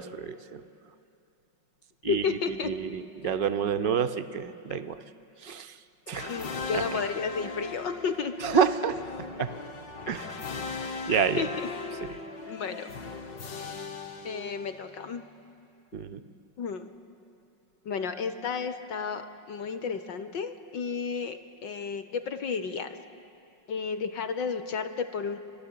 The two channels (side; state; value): right; late; 5.5 ms